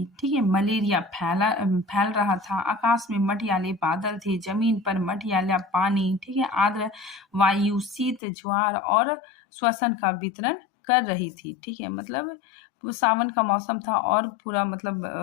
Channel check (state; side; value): drops out; right; at 8.2 s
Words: ठीक है, मलेरिया फैल रहा था। आकाश में मटियाले बादल थे, जमीन पर मटियाला पानी। ठीक है, आर्द्र वायु शीत ज्वार और श्वसन का वितरण कर रही थी। ठीक है, मतलब वो सावन का मौसम था और पूरा